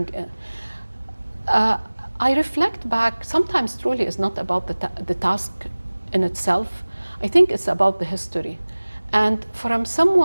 I reflect back. Sometimes truly it's not about the task in itself. I think it's about the history. And from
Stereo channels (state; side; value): inverted; both; correlation -1.00